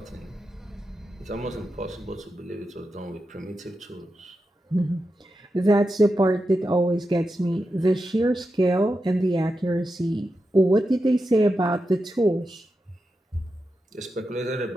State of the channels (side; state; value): both; normal; correlation 0.89